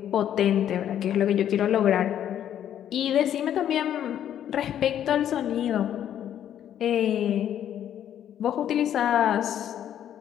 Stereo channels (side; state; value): right; quieter; 10.4 dB